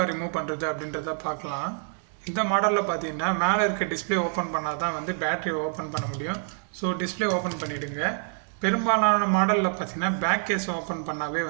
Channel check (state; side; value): silent; left; 60 dB below the other